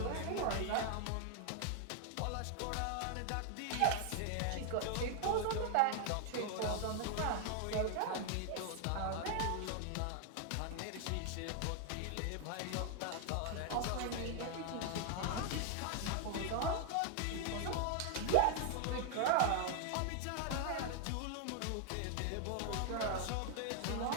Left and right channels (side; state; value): both; different; correlation 0.00